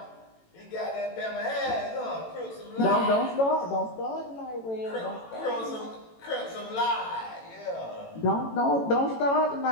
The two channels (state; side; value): late; right; 18 ms